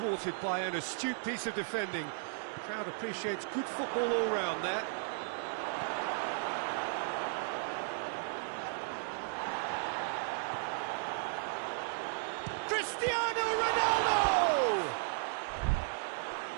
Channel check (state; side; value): silent; left; digital silence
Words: by an astute piece of defending. Crowd appreciates good football all round there. Cristiano Ronaldo!